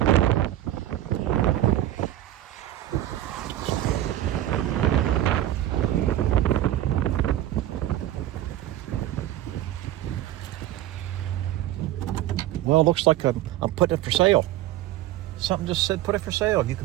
Well, it looks like I'm putting it for sale. Something just said put it for sale. You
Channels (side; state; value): left; quieter; 13.6 dB